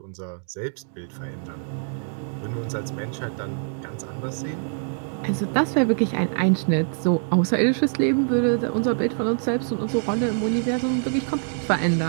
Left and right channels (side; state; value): left; silent; digital silence